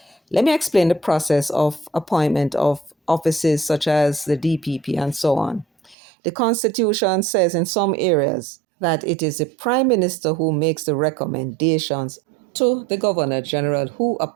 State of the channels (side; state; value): left; drops out; at 6.0 s